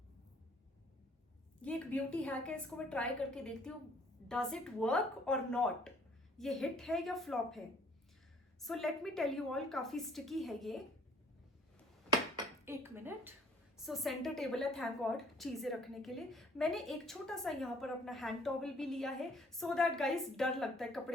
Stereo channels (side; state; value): both; normal; correlation 0.59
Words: ये एक ब्यूटी हैक है, इसको मैं ट्राई करके देखती हूँ डज इट वर्क और नॉट, ये हिट है या फ्लॉप है। So let me tell you all, काफी स्टिकी है ये। 1 मिनट। सो सेंटर टेबल है, थैंक गॉड, चीजें रखने के लिए। मैंने एक छोटा सा यहाँ पर अपना हैंड टॉवल भी लिया है सो दैट गाइस डर लगता है